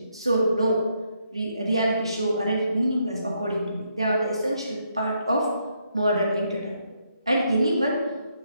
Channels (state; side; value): inverted; both; correlation -0.75